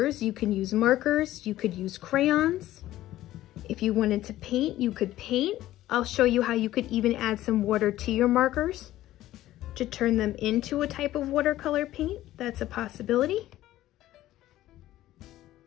you can use markers, you could use crayons. If you wanted to paint, you could paint. I'll show you how you could even add some water to your markers to turn them into a type of watercolor paint. That's a possibility.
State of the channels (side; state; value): right; quieter; 14.6 dB